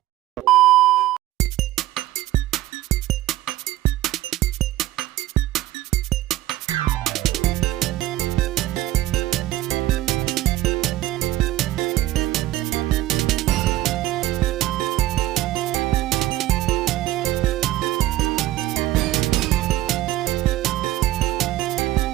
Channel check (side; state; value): left; quieter; 15.4 dB